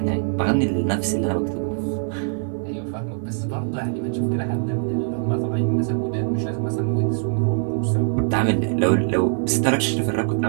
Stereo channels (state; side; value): silent; left; 64 dB below the other